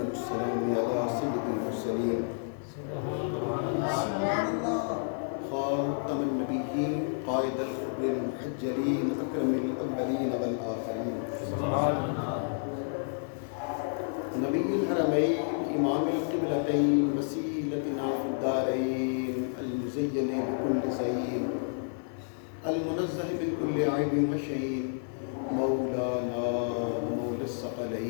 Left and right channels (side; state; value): right; silent; 58 dB below the other